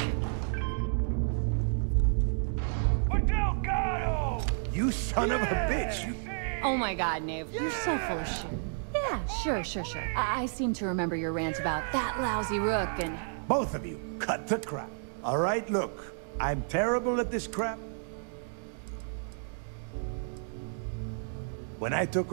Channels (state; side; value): silent; left; digital silence